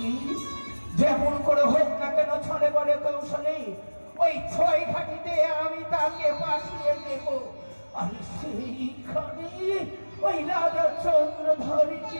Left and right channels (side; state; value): both; inverted; correlation -1.00